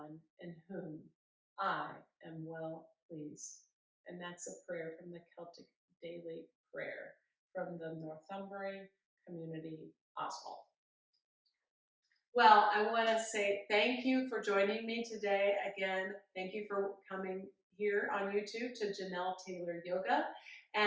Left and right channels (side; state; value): both; identical; correlation 1.00